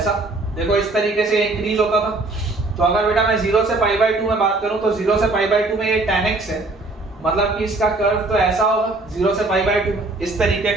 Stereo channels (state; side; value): quieter; left; 3.1 dB